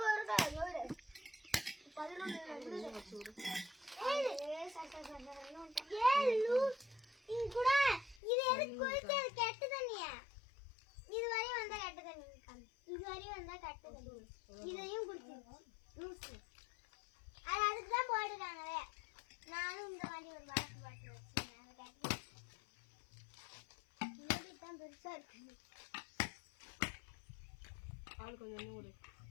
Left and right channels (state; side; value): drops out; right; at 8.2 s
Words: இதையும் குடிச்சு அது அதுக்குதான் போட்டுருக்காங்களே. நானும் இந்த மாதிரி ஒரு பாட்டு பாட்டு வச்சிருக்கேன். பெருசா இருக்கு. ஆளு கொஞ்சம் ஒரு